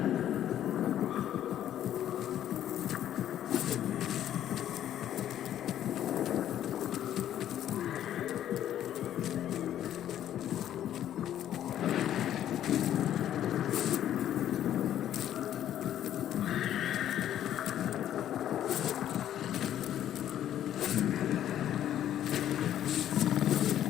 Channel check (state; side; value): quieter; right; 11.2 dB